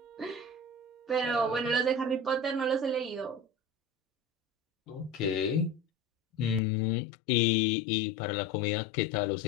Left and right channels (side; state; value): right; drops out; at 6.6 s